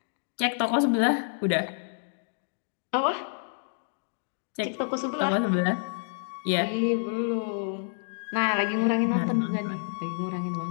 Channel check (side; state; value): right; silent; digital silence